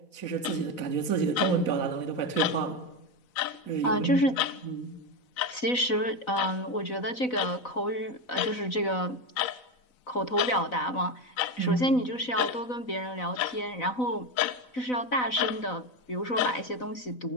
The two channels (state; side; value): late; right; 4.0 ms